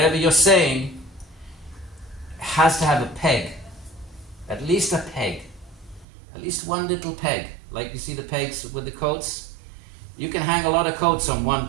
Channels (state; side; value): drops out; left; at 6.1 s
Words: you're saying has to have a peg. At least a peg. At least one little peg. Like you see the pegs with the coats? You can hang a lot of coats on one